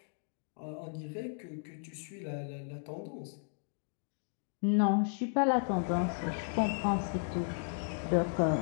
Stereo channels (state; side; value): silent; right; digital silence